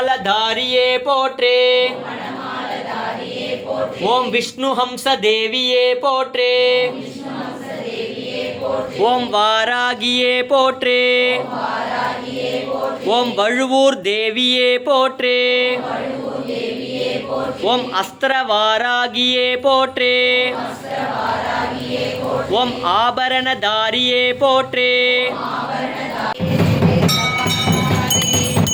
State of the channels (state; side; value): identical; both; correlation 1.00